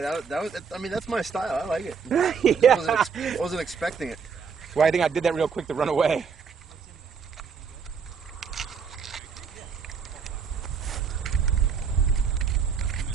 that was. I mean, that's my style. I like it. Yeah. I wasn't expecting it. Well, I think I did that real quick to run away.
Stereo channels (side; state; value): left; quieter; 6.1 dB